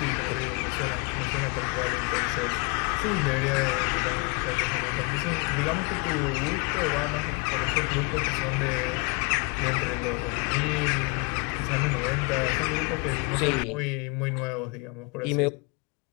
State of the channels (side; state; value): right; quieter; 30.4 dB